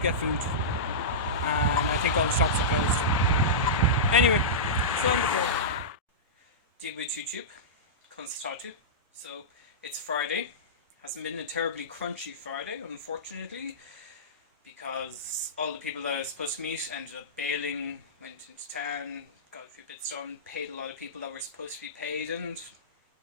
get food, and I think all the shops are closed. Anyway, so on the floor. Deal with YouTube, constatatu. So it's Friday. Hasn't been a terribly crunchy Friday, unfortunately, because all the people that I was supposed to meet ended up bailing, went into town, got a few bits done, paid a lot of people that were supposed to be paid, and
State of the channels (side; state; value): both; normal; correlation -0.17